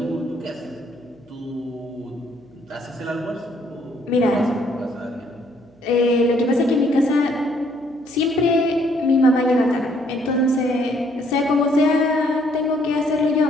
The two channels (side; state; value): right; noise; hum, 29 dB below the sound